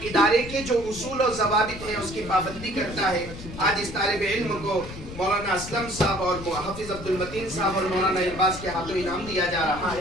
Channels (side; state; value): left; noise; rumble, 12 dB below the sound